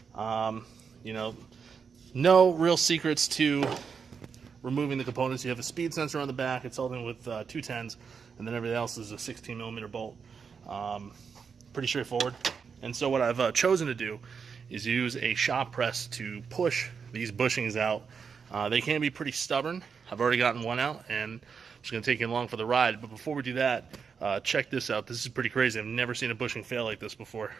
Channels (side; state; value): left; quieter; 6.1 dB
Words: You know, no real secrets to removing the components. You have a speed sensor on the back. It's held in with 210s, and then everything else is a 16mm bolt. Pretty straightforward. And so what I've chosen to do is use a shop press to push these bushings out. They can be pretty stubborn. I've already gotten one out, and I'm just going to take you along for the ride. But before we do that, check this out. This is pretty crazy. I've never seen a bushing fail like this before.